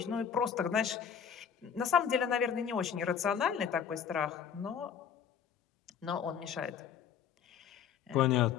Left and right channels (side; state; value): right; quieter; 7.8 dB